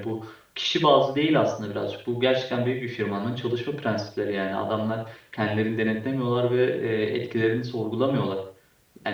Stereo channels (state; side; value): identical; both; correlation 1.00